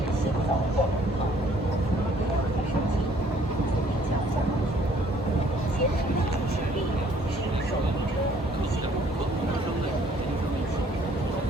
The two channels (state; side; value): normal; both; correlation 0.60